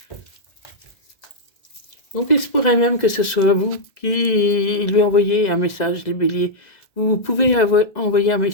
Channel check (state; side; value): late; right; 2.0 ms